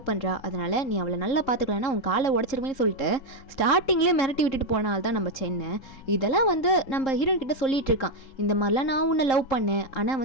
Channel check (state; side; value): late; right; 3.7 ms